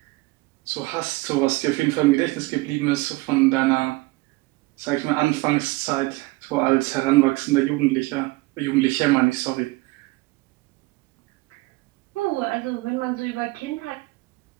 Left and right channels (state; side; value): quieter; left; 22.4 dB